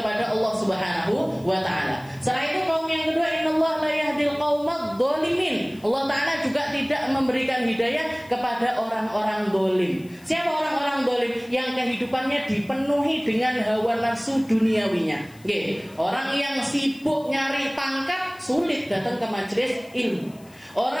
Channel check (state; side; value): noise; left; hiss, 26 dB below the sound